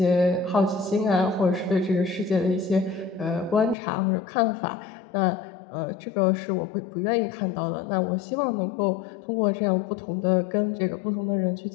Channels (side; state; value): right; drops out; at 3.8 s